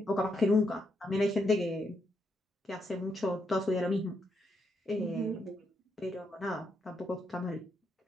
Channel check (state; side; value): normal; both; correlation 0.79